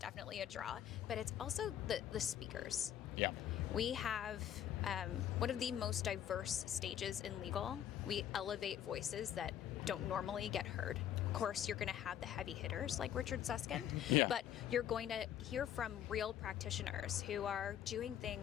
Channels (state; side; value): quieter; right; 10.4 dB